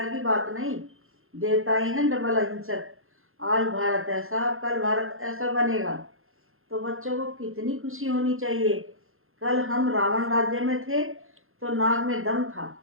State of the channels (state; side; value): late; left; 0.61 ms